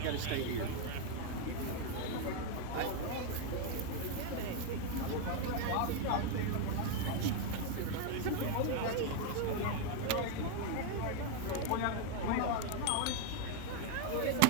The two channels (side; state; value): both; different; correlation 0.00